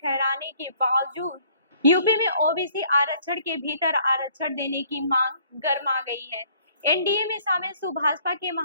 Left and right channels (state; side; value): inverted; both; correlation -0.59